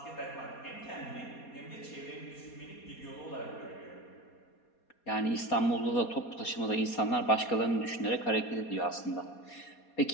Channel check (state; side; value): late; right; 4.2 ms